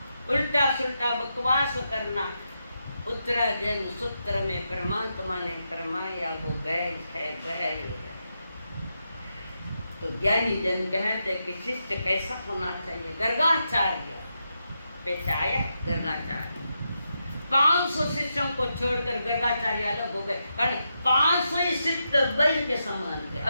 उल्टा सुल्टा बकवास करना। उत्तराजन सूत्र में परमात्मा ने फरमाया वो बैल है, बैल है। तो ज्ञानी जन कहते कि शिष्य कैसा होना चाहिए। गर्गाचार्य पेश आया, गर्गाचार्य 500 शिष्यों को छोड़कर गर्गाचार्य अलग हो गए, कारण 500 शिष्य बैल के समान थे,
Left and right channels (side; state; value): both; inverted; correlation -0.85